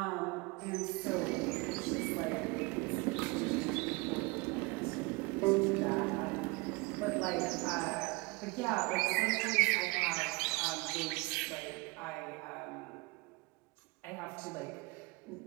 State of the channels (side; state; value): left; quieter; 26.6 dB